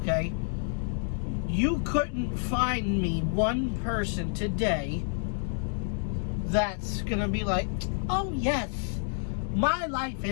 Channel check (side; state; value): right; silent; 58 dB below the other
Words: You couldn't find me one person today that's gonna be like, oh yes, my life